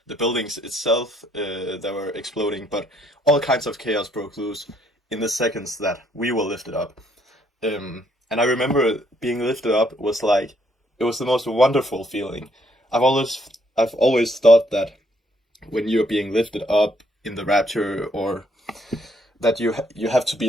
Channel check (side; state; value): both; normal; correlation 0.69